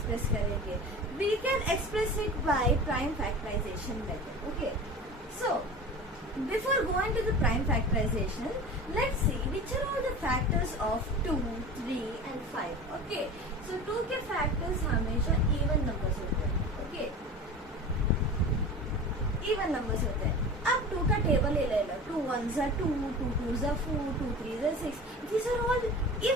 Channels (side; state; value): both; normal; correlation 0.35